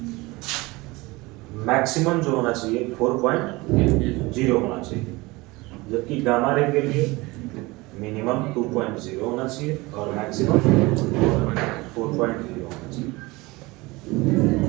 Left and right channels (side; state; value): left; quieter; 22.5 dB